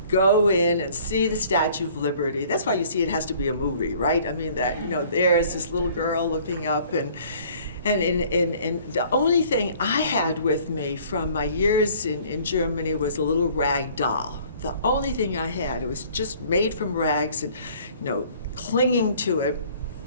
go in and see the Statue of Liberty. That's why you see it has to be a movie, right? I mean, that, you know, there's this little girl looking up, and the only thing I had with me from my years in Germany was a little rag doll. The only thing I had, it was just made from rags and, you know, clinging to it.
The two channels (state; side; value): inverted; both; correlation -0.54